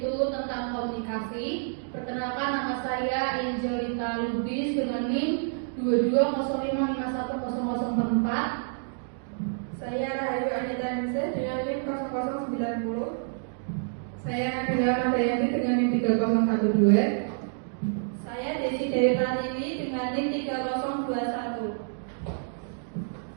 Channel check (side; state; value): left; silent; digital silence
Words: tentang komunikasi. Perkenalkan, nama saya Angelita Lubis dengan NIM 2205510044. Saya Rahayu Anita Nise dengan NIM 0090. Saya Nabila Nadayanti dengan NIM 3012. Saya Desi Dewi Pratiwi dengan NIM 3021.